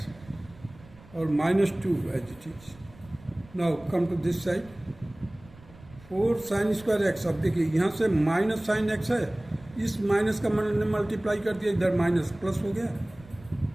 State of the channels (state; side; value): noise; right; rumble, 23 dB below the sound